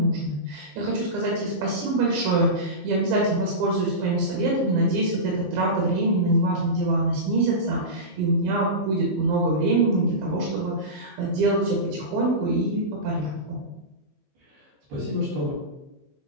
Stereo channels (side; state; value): left; late; 15 ms